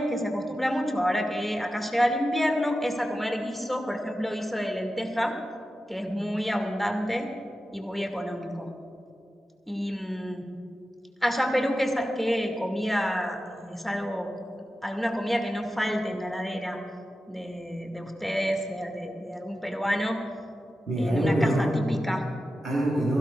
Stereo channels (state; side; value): normal; both; correlation 0.92